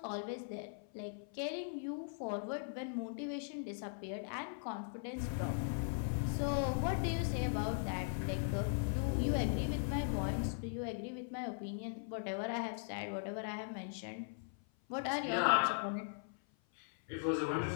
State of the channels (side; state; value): right; silent; 51 dB below the other